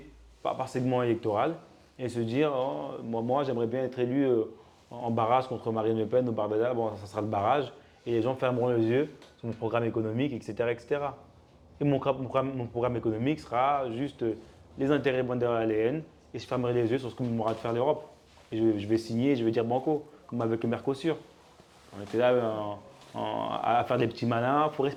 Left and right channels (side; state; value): both; identical; correlation 1.00